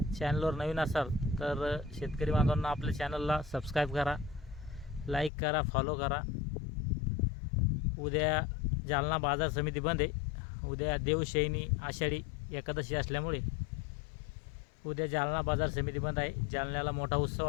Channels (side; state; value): right; drops out; at 5.3 s